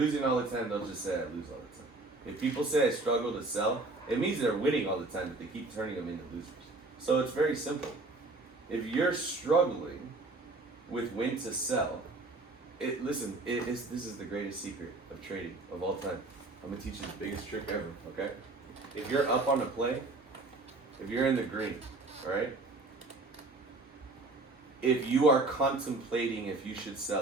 all the time, they'll just say I lose all the time. If people say I struggle to sell, it means they're winning all the time, but they keep turning them into losers. So it's very simple. If you're struggling with when to sell, this is the greatest secret of trading of all time. I'm gonna teach you the biggest trick ever, okay? If you're up on a play, if you're in the green, all right? If you are contemplating if you should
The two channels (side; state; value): left; quieter; 3.2 dB